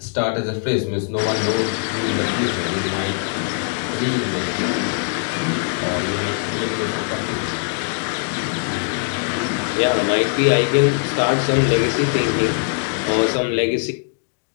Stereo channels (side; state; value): right; silent; digital silence